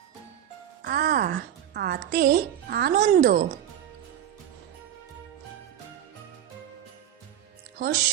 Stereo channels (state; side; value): quieter; left; 10.7 dB